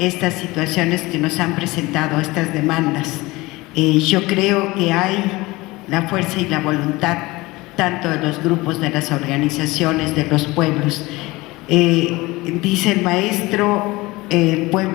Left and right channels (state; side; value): quieter; right; 21.2 dB